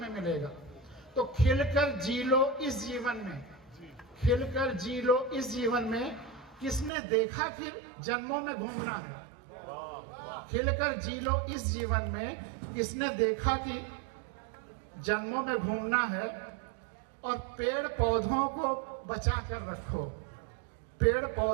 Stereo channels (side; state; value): left; drops out; at 6.9 s